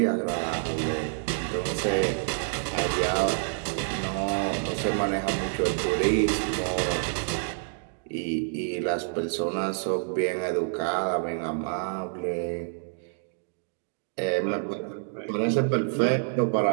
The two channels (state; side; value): silent; left; digital silence